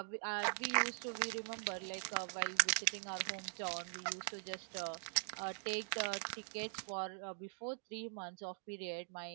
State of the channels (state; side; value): silent; left; digital silence